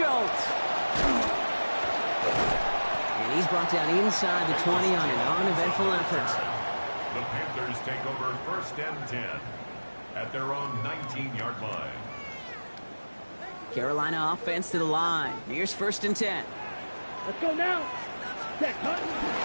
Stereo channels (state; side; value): inverted; both; correlation -1.00